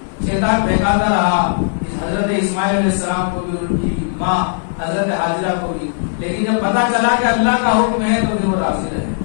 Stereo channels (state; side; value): silent; right; digital silence